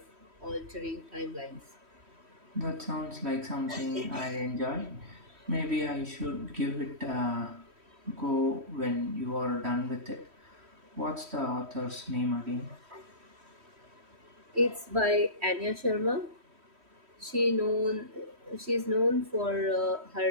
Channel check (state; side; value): late; left; 3.1 ms